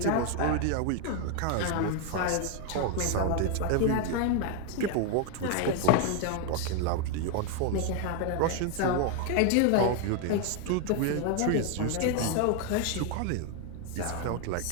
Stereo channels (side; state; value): both; different; correlation 0.01